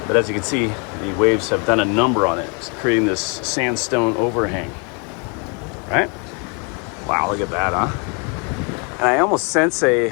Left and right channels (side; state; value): right; quieter; 35.0 dB